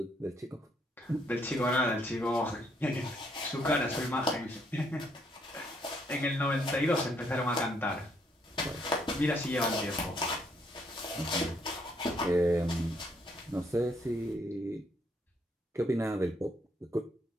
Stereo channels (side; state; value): both; normal; correlation 0.71